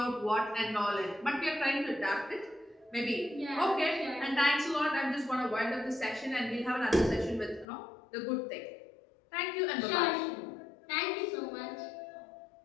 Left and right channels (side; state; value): right; drops out; at 7.7 s